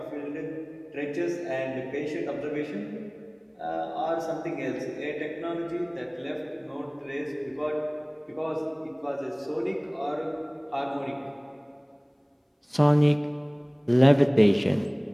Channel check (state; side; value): identical; both; correlation 1.00